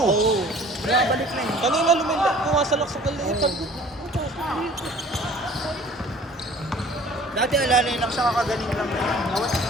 Nakabalik na yun. Kanina pumasalak sa kalipad. Dati alalay lang siya, kakagaling lang. Nawat.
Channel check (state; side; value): normal; both; correlation 0.50